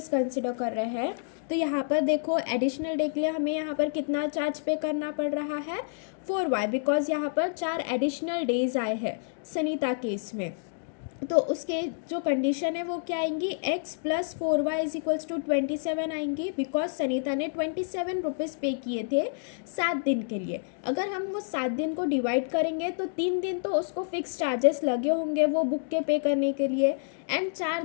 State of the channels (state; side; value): silent; right; digital silence